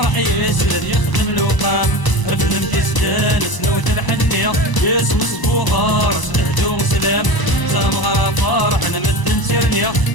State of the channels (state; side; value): late; right; 1.0 ms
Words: يسند يخدم الوقام. رفلم كيستانس نوت الحنية اسم صبوغار سنهدو سلام. تامغرا فرح نمد نسيرنيا